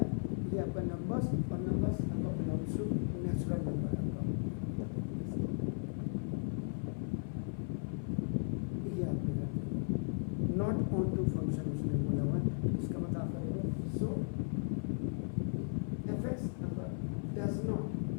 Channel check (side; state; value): right; silent; 53 dB below the other